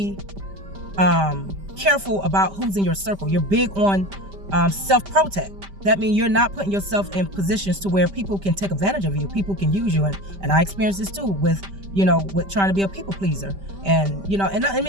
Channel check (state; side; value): late; left; 5.1 ms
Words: careful about who's in your circle. You're big on self-protect. that means you're not putting yourself in positions to where people can take advantage of you. People can use you. And I experienced this too with trying to be a people pleaser. And, and let